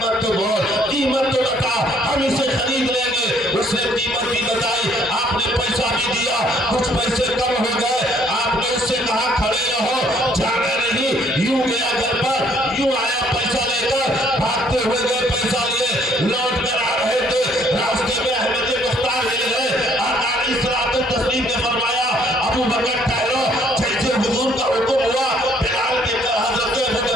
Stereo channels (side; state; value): both; normal; correlation 0.64